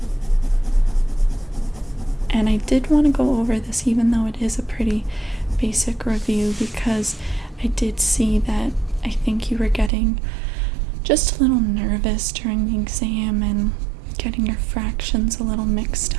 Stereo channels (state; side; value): drops out; left; at 9.9 s